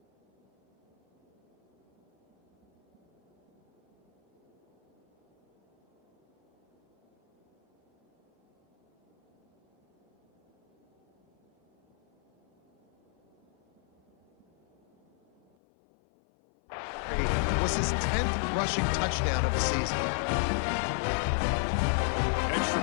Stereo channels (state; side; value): drops out; right; at 15.5 s